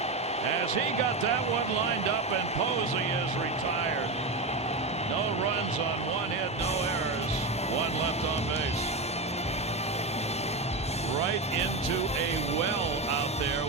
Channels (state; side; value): quieter; left; 3.3 dB